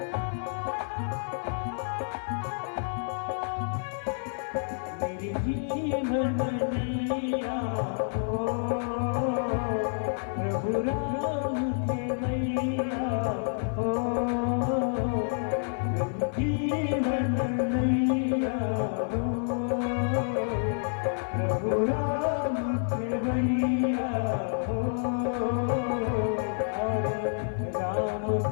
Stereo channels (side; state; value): right; silent; 59 dB below the other